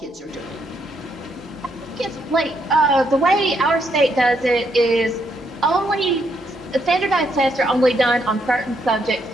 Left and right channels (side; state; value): both; normal; correlation 0.75